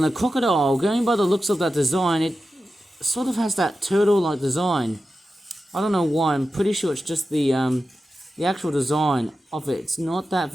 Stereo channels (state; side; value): normal; both; correlation 0.92